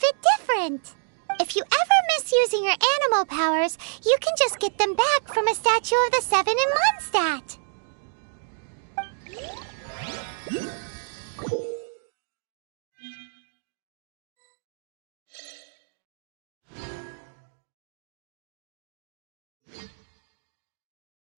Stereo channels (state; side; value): silent; left; 60 dB below the other